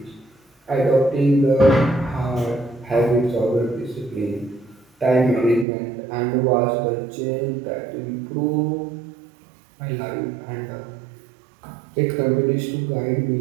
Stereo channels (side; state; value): left; drops out; at 5.7 s